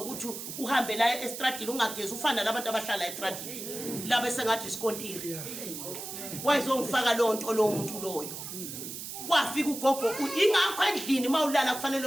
uhambe la estradini ungagezi ufana nabantu abahlala estradini laba sengathi isikontiri wayezongifaka lonto lo muntu loyo kwafika ugogo ingakho endlini mawulala kufanele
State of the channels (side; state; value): right; noise; hiss, 8 dB below the sound